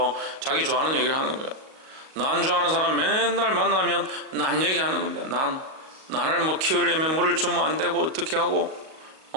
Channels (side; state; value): left; late; 38 ms